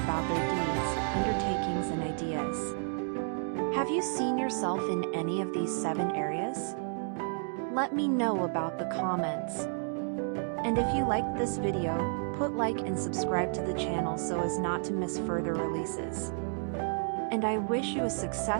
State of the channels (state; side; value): silent; left; 57 dB below the other